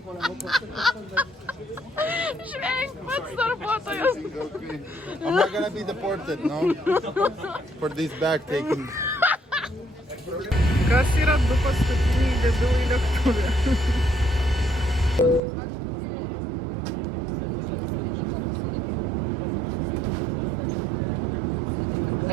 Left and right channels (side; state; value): left; drops out; at 15.4 s